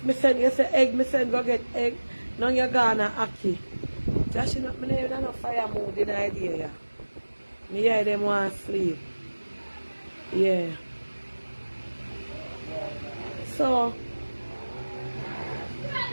me send you say egg, me send go get egg. Now you're gonna Aki. Just you know, me never no fire mood in the idea. Yeah. Me hear them want sleep. Yeah. So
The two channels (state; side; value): inverted; both; correlation -1.00